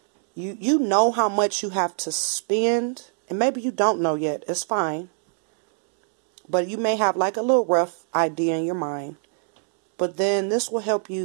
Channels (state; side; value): silent; left; digital silence